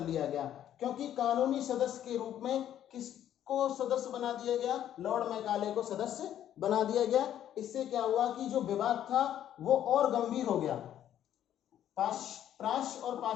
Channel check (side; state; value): right; quieter; 11.0 dB